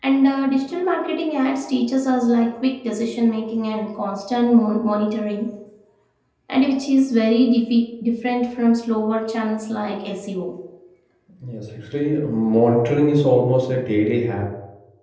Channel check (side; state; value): both; identical; correlation 1.00